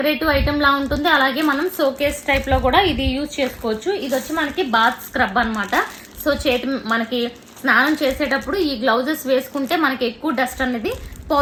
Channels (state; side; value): identical; both; correlation 1.00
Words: ఐటమ్ లా ఉంటుంది. అలాగే మనం షోకేస్ టైప్ లో కూడా ఇది యూజ్ చేసుకోవచ్చు. ఇది వచ్చి మనకి బాత్ స్క్రబ్ అనమాట. సో మనకి స్నానం చేసేటప్పుడు ఈ గ్లౌజెస్ వేసుకుంటే మనకి ఎక్కువ డస్ట్ అనేది